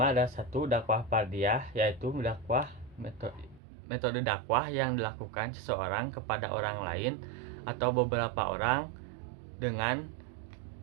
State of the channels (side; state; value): left; drops out; at 3.6 s